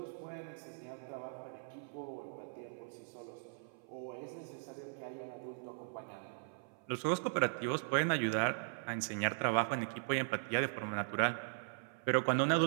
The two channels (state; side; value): silent; left; 52 dB below the other